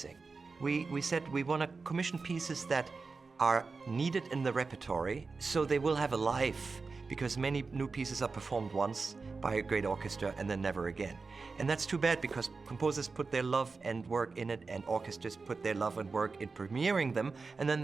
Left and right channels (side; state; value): left; quieter; 4.3 dB